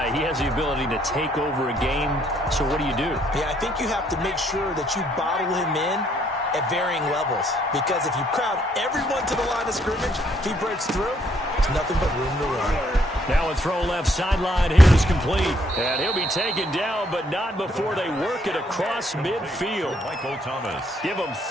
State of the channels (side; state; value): both; normal; correlation 0.69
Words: He has the ability to take over a game, so what do you do? Yeah, I think you have to make sure that you bottle him in at varying levels, because if you crowd everyone to the line of scrimmage, if he breaks through, there's nothing but room to run. Now a throw left sideline here is complete, and he'll be taken down, but not before they work it across midfield. Michael Thomas. Give him